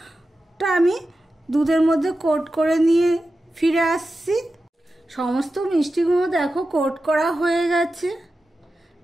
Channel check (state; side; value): normal; both; correlation 0.92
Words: আমি দুধের মধ্যে কোট করে নিয়ে ফিরে আসছি। সমস্ত মিষ্টিগুলো দেখো কোট করা হয়ে গেছে,